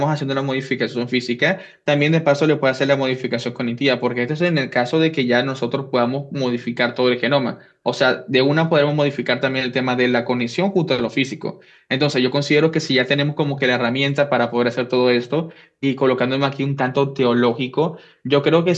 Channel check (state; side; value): identical; both; correlation 1.00